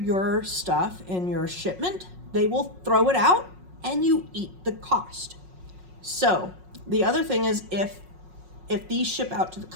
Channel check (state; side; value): late; left; 5.5 ms